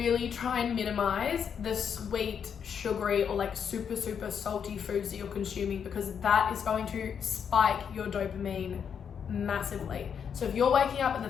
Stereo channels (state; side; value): quieter; right; 7.4 dB